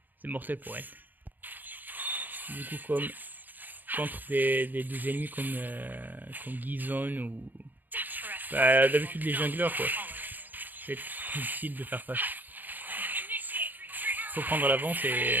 mortel pour elle. Du coup, comme contre des ennemis comme Gizon ou... Bah, d'habitude les junglers, quoi. C'est difficile de faire face. Faut prendre l'avance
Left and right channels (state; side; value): late; left; 0.087 ms